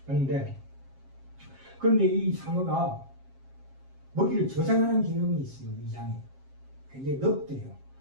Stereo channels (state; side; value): late; left; 7.5 ms